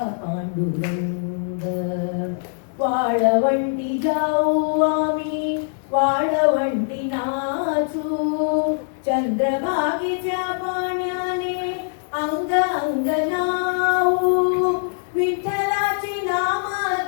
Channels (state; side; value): silent; right; digital silence